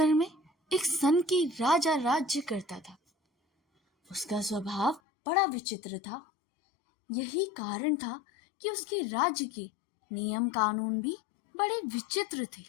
में एक सन की राजा राज्य करता था। उसका स्वभाव बड़ा विचित्र था। यही कारण था कि उसके राज्य के नियम कानून भी बड़े विचित्र थे।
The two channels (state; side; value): drops out; right; at 5.0 s